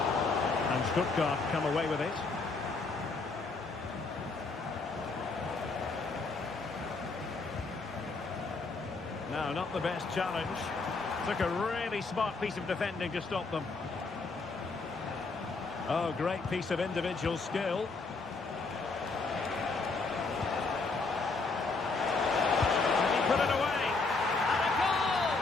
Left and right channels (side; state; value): right; quieter; 3.9 dB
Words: And Stuttgart come away with it. No, not the best challenge. Took a really smart piece of defending to stop them. Oh, great piece of individual skill. And he put it away. And a goal